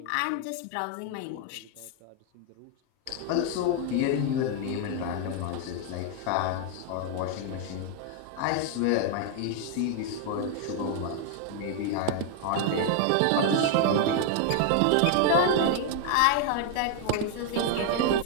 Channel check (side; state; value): both; different; correlation 0.00